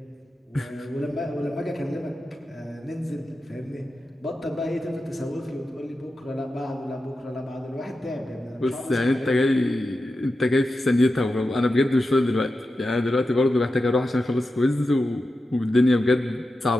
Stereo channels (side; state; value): both; normal; correlation 0.91